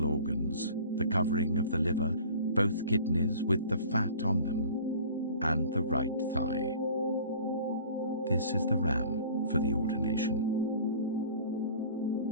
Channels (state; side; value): inverted; both; correlation -0.45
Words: organs, the covering of the liver, both kidneys with the fat on them, and the right thigh. This is the ram for the ordination.